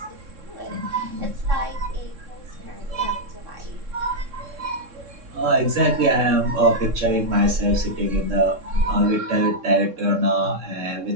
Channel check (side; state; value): left; late; 3.6 ms